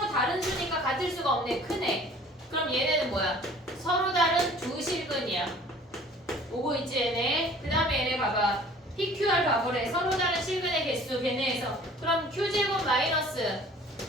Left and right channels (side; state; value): both; normal; correlation 0.50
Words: 다른 수니까 같을 수가 없네. 크네. 그럼 얘네는 뭐야? 서로 다른 두 실근이야. 오고 있지 얘네. 그 다음에 얘네 봐봐. PQR 가보래. 서로 다른 실근의 개수 걔네에서. 그럼 Q제곱 마이너스